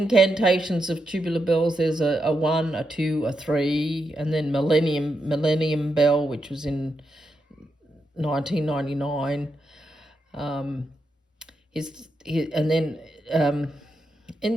of Tubular Bells. There's a 1, a 2, a 3, and then Millennium Bell, which was in 1999.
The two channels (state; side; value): normal; both; correlation 0.85